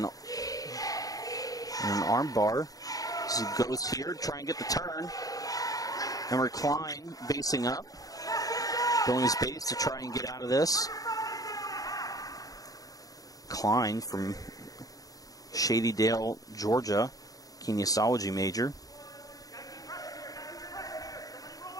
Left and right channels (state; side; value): late; right; 0.17 ms